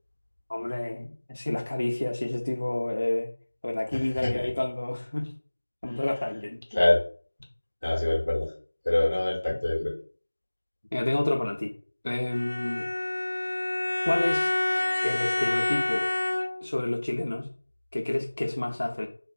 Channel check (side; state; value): both; inverted; correlation -1.00